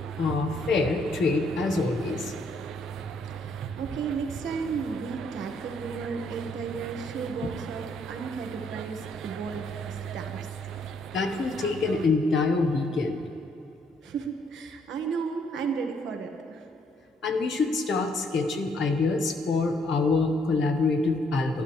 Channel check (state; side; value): normal; both; correlation 0.69